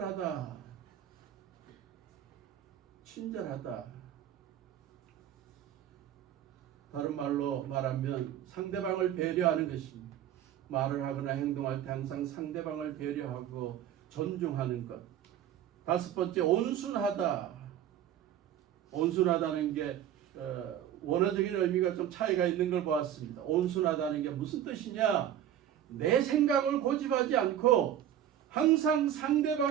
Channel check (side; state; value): left; quieter; 10.7 dB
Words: 친절하다. 다른 말로 말하면 상대방을 배려하는 것입니다. 말을 하거나 행동할 때 항상 상대방을 배려하고 존중하는 것. 다섯 번째, 온순하다. 온순하다는 게 원어적인 의미가 좀 차이가 있는 걸 보았습니다. 온순하다는 게 무슨 뜻이냐? 내 생각을 고집하지 않고 항상